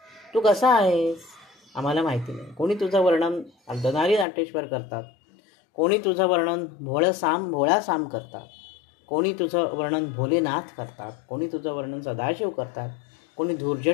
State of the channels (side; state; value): right; drops out; at 4.2 s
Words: तू कसा आहेस आम्हाला माहिती नाही. कोणी तुझं वर्णन अर्धनारी नाट्येश्वर करतात, कोणी तुझं वर्णन भोळा साम करतात, कोणी तुझं वर्णन भोलेनाथ करतात, कोणी तुझं वर्णन सदाशिव करतात, कोणी